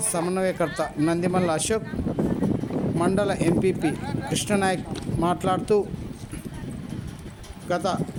సమన్వయకర్త నందిమల్ల అశోక్, మండల ఎంపీపీ కృష్ణనాయక్ మాట్లాడుతూ గత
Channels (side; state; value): both; identical; correlation 1.00